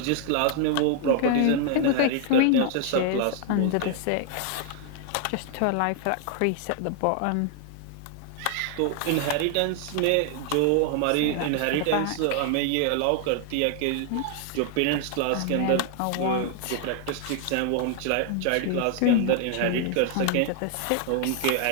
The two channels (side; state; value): both; different; correlation 0.00